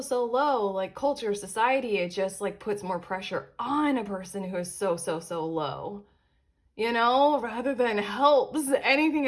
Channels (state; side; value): identical; both; correlation 1.00